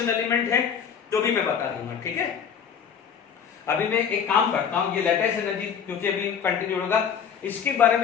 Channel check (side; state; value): right; quieter; 7.5 dB